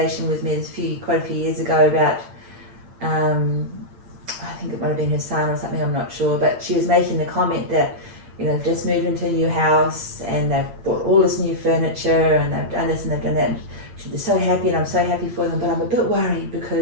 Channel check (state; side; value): late; left; 8.8 ms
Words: with me quite a few years ago about, I think it might have been her son or something, I'm not sure, but she was making the comment that, you know, they've just moved into a new house and they've bought all this new furniture and they've done this and they've done that. And they're so happy and I'm so happy for them, but I'm a bit worried